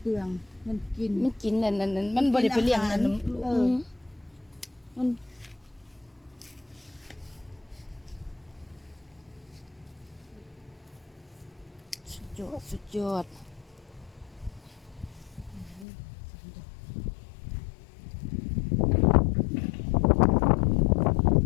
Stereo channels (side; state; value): right; drops out; at 15.9 s